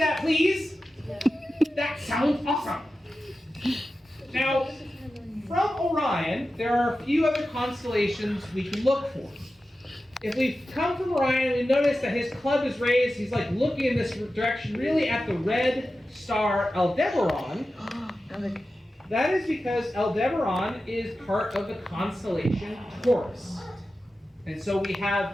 please. That sounds awesome. Now, from Orion, there are a few other constellations we can look for. If we come from Orion, we notice that his club is raised. He's like looking in this direction, really at the red star Aldebaran. That is because Aldebaran is part of the constellation Taurus. And so we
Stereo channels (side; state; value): both; normal; correlation 0.93